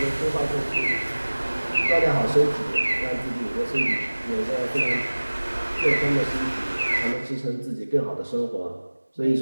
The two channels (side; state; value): both; inverted; correlation -1.00